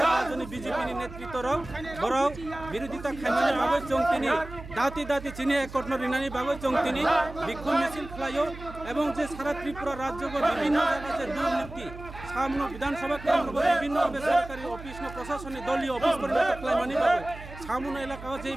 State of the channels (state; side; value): noise; right; hum, 14 dB below the sound